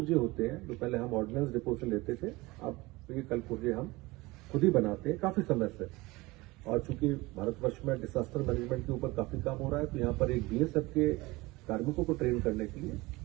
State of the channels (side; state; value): left; quieter; 21.8 dB